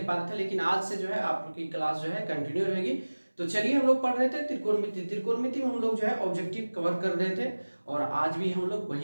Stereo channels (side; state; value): both; inverted; correlation -1.00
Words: रहे थे। लेकिन आज से जो है आपकी क्लास जो है कंटिन्यू रहेगी। तो चलिए, हम लोग पढ़ रहे थे त्रिकोणमिति में हम लोग जो है ऑब्जेक्टिव कवर कर रहे थे और आज भी हम लोग